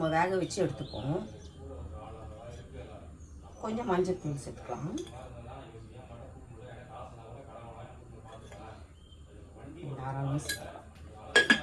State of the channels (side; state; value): both; identical; correlation 1.00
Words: வேக வச்சு எடுத்துப்போம். கொஞ்சம் மஞ்சள் தூள் சேர்த்துக்கலாம். தாராளமாக சேர்த்துக்கலாம்.